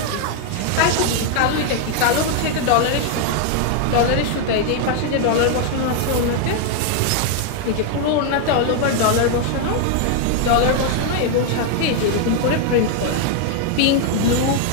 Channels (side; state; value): both; different; correlation 0.00